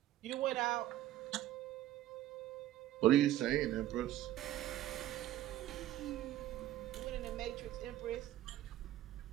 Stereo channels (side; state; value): left; quieter; 13.9 dB